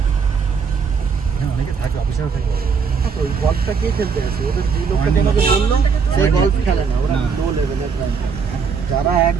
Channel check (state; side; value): quieter; left; 5.8 dB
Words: অনেকে থাকে, অফিসার থাকে। ওই গল্ফটা কে খেলতে আসে? ওদের যে লোকটা তোমাকে বললো সেই গল্ফ খেলে না, ওরা লো লেভেলের। যারা